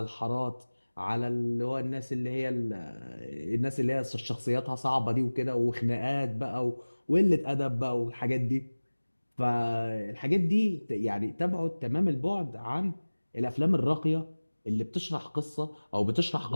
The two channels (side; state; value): both; inverted; correlation -1.00